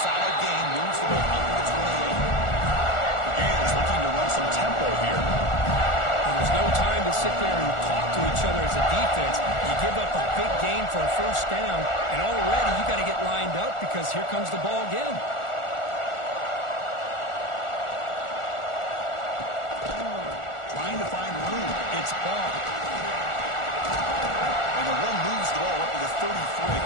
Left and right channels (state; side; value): late; right; 1.4 ms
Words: solid gain, moves the ball up to the 28. The Gators looking to run some tempo here. And there's no time to sit there and talk to each other as a defense. You give up a big gain for a first down, and already you got to get lined up because here comes the ball again. Trying to find room. It's ball. And the run moves the ball up to the 33.